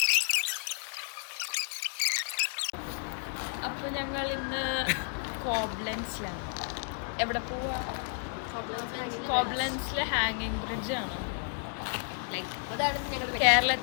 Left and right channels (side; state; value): right; silent; 57 dB below the other